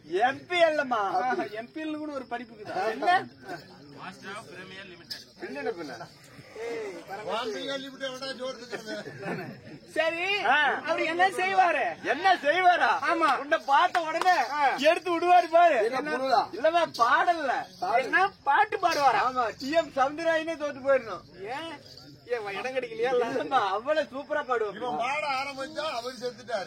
எம்பிஎல்மா. எம்பிஎல் கூட ஒரு படிப்புக்குதா? என்ன சரி, அவர் என்ன செய்வாரு? என்ன செய்வாரா? ஆமா, உன்னை பார்த்த உடனே எடுத்து விடுவாரு பாரு. இல்லமா பாடல, என்ன பாட்டு பாடுவாரா? ஆமா, டிஎம் சவுந்தரராயனே தோத்து போயிடணும். ஏன் இடம் கிடைக்கலையா? அவ்வளவு சூப்பரா பாடுவோம். பாட ஆரம்பிச்சா அவர்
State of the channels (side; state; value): both; identical; correlation 1.00